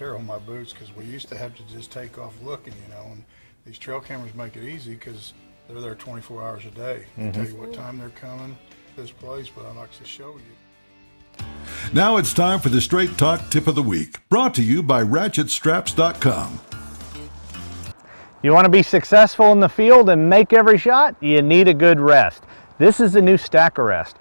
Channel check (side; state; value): both; inverted; correlation -1.00